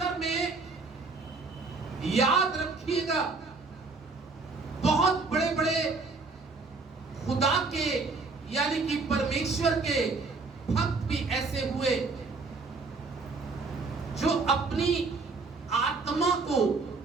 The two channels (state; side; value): quieter; left; 4.0 dB